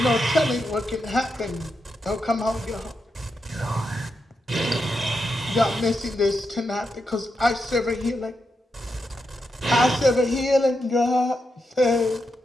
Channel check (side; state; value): both; normal; correlation 0.85